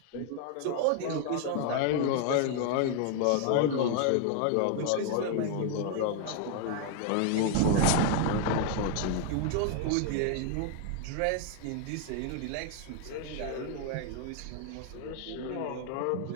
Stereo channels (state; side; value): different; both; correlation 0.00